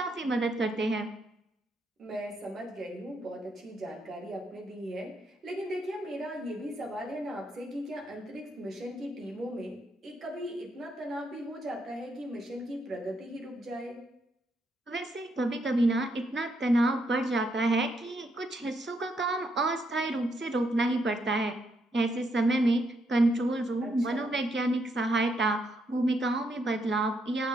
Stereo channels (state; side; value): normal; both; correlation 0.77